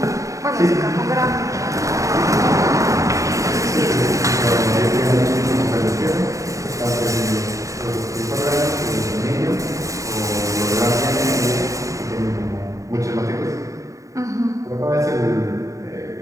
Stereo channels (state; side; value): late; left; 0.16 ms